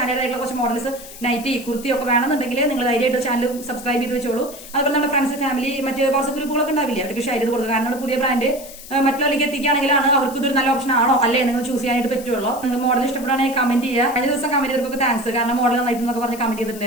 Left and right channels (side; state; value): left; noise; hiss, 15 dB below the sound